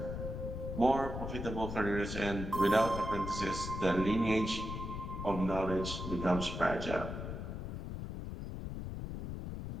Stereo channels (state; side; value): noise; left; rumble, 6 dB below the sound